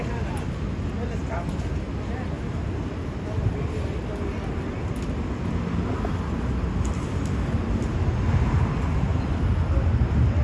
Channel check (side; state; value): both; identical; correlation 1.00